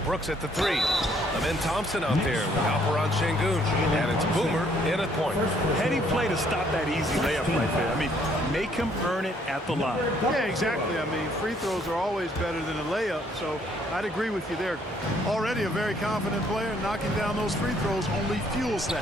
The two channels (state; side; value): normal; both; correlation 0.65